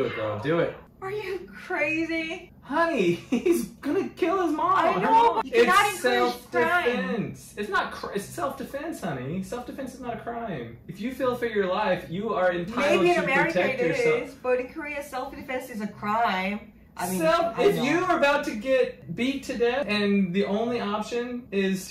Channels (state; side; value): identical; both; correlation 1.00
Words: it, girl. Do it. Are you crazy? Honey, he's gonna kill his mom. I know. You cannot It's encourage crime. self-defense. It's not. It's self-defense, honey. Self-defense is not a crime. If you feel for your life, you are entitled Maybe in to America protect it yourself. is, but in Korea self-defense is a crime. I mean, If you are about to get beat to death and the only option is